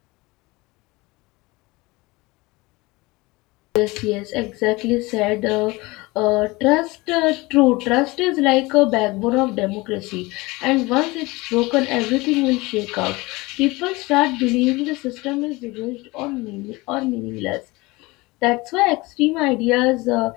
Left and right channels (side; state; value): right; quieter; 22.6 dB